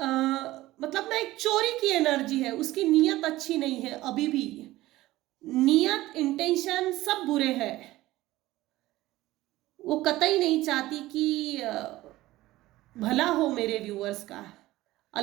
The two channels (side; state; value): left; quieter; 17.0 dB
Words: मतलब ना, एक चोरी की एनर्जी है, उसकी नीयत अच्छी नहीं है अभी भी, नीयत, इंटेंशन सब बुरे हैं। वो कतई नहीं चाहती कि भला हो मेरे व्यूअर्स का।